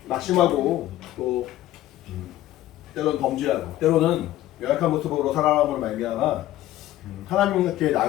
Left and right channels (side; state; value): right; quieter; 14.3 dB